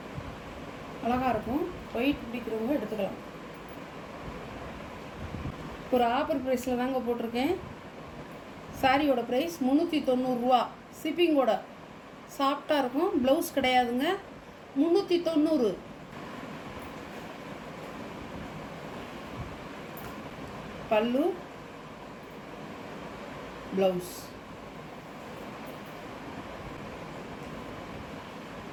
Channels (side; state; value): both; identical; correlation 1.00